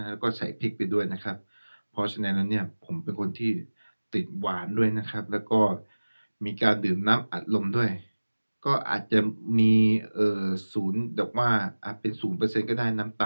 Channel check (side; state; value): both; inverted; correlation -1.00